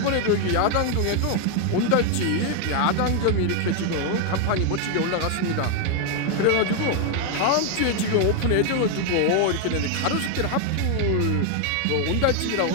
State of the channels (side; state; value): both; different; correlation 0.01